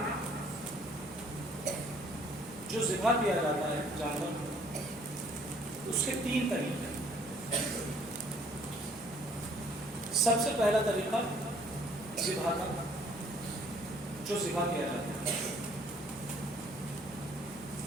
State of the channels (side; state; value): both; normal; correlation 0.60